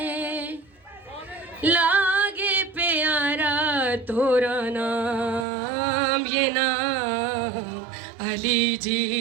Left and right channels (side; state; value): left; drops out; at 5.5 s